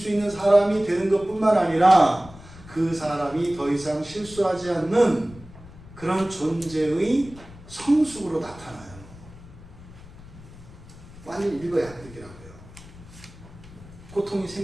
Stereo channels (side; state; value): left; noise; rumble, 19 dB below the sound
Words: 있는 사람이 되는 것뿐만 아니라 그 사람이 더 이상 실수하지 않는 그런 존재의 성숙으로 나타나요. 완전히 일거양득이라고요. 고통이